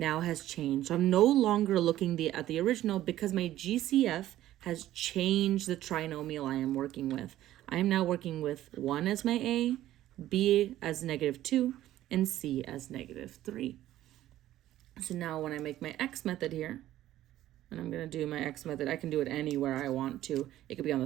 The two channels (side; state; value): left; quieter; 13.8 dB